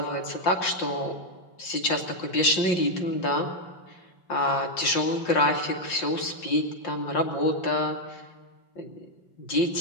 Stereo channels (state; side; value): late; right; 5.6 ms